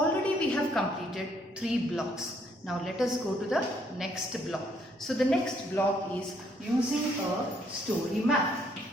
we have completed 3 blocks. Now, let us go to the next block. So, the next block is using a story map.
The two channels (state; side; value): normal; both; correlation 0.69